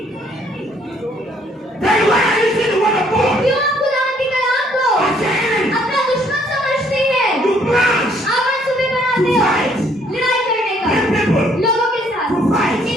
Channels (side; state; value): both; normal; correlation 0.65